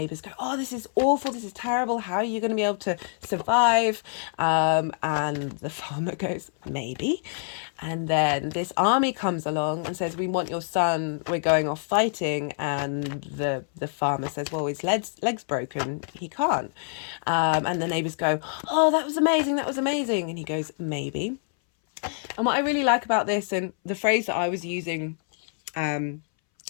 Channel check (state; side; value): silent; right; 61 dB below the other